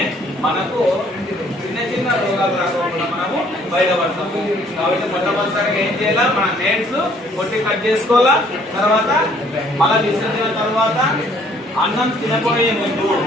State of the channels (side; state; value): both; normal; correlation 0.61